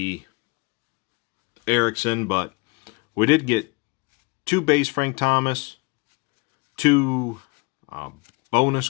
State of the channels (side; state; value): right; quieter; 28.1 dB